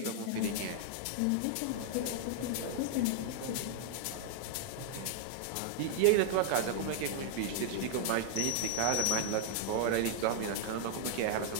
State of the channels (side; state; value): both; different; correlation 0.00